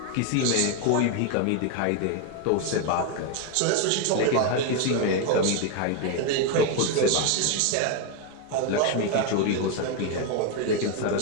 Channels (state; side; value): different; both; correlation 0.01